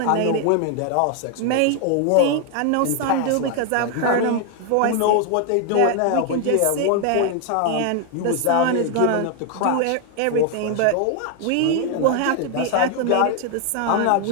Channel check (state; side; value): different; both; correlation 0.00